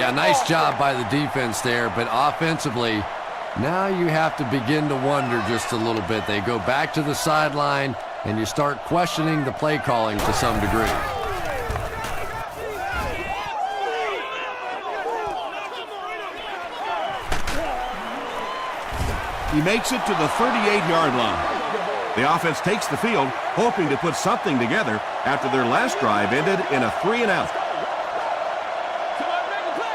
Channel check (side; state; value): both; identical; correlation 1.00